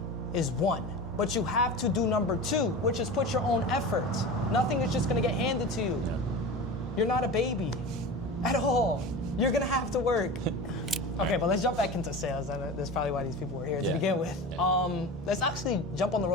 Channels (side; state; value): both; normal; correlation 0.31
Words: is one. But you have to do number 2, which is put your own effort. Nothing is just gonna get handed to you. You're not a baby at all. You're gonna have to work. Okay, but let's jump back into sales. That's probably why these people were here to begin with. Let's actually jump on the